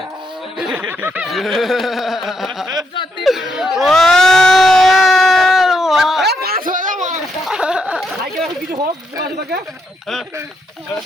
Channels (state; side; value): normal; both; correlation 0.79